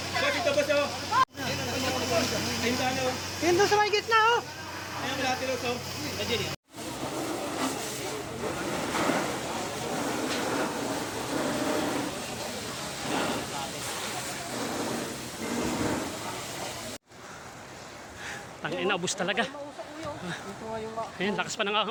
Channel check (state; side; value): identical; both; correlation 1.00